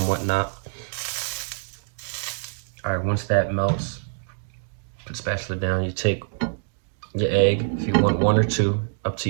whatnot. All right, once that melts, put the spatula down. You take your egg, if you want one or two, up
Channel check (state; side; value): silent; left; digital silence